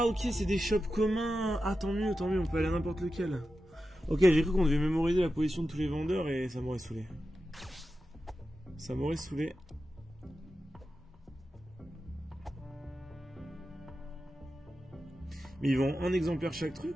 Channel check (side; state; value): both; normal; correlation 0.91